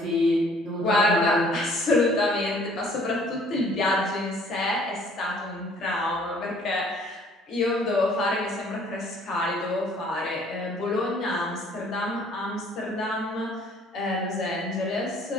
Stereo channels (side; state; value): both; normal; correlation 0.58